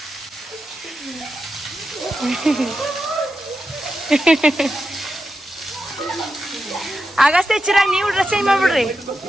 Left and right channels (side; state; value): both; normal; correlation 0.89